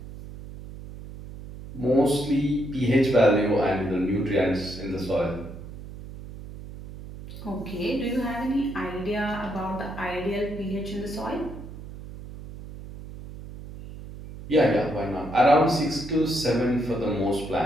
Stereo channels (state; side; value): noise; right; hum, 13 dB below the sound